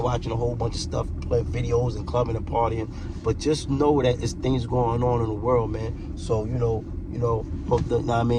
watching a whole bunch of stuff, play videos and clubbing and partying, but just know that it's things going on in the world, man. So hope that, I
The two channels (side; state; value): both; identical; correlation 1.00